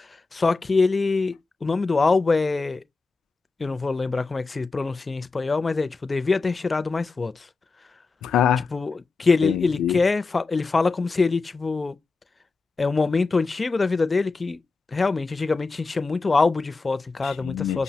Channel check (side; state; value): right; quieter; 4.0 dB